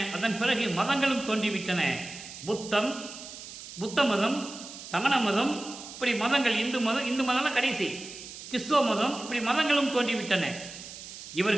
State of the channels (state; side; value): noise; right; hiss, 13 dB below the sound